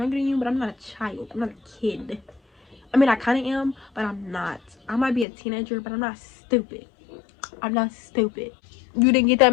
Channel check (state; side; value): drops out; right; at 5.2 s